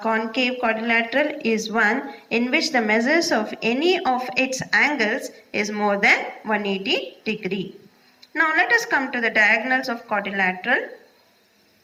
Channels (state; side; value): identical; both; correlation 1.00